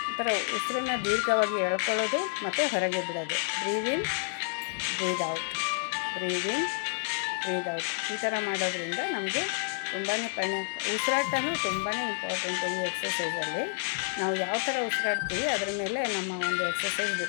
ಈ ಥರ ಉಸಿರನ್ನು ದೀರ್ಘವಾಗಿ ಎಳ್ಕೊಳ್ಳೋದು ಮತ್ತು ಹೊರಗೆ ಬಿಡೋದು. ಬ್ರೀದ್ ಇನ್ ಬ್ರೀದ್ ಔಟ್ ಬ್ರೀದ್ ಇನ್ ಬ್ರೀದ್ ಔಟ್ ಈ ಥರ ಮಾಡೋದ್ರಿಂದ ನಮಗೆ ತುಂಬಾ ಉಸಿರಾಟನೂ ತುಂಬಾ ಇಂಪಾರ್ಟೆಂಟು ಈ ಎಕ್ಸಸೈಸಲ್ಲಿ. ನಾವು ಯಾವ ಥರ ಉಸಿರಾಡ್ತೀವಿ ಅದರ ಮೇಲೆ ನಮ್ಮ ಎಕ್ಸಸೈಸ್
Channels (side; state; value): right; silent; digital silence